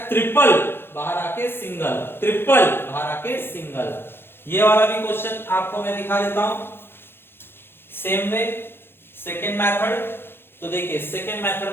ट्रिपल बाहर आके सिंगल, ट्रिपल बाहर आके सिंगल। ये वाला भी क्वेश्चन आपको मैं दिखा देता हूं सेम वे, सेकेंड मेथड। तो देखिए सेकेंड मेथड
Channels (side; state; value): right; late; 0.11 ms